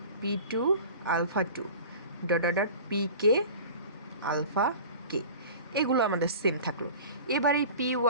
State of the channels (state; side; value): inverted; both; correlation -0.39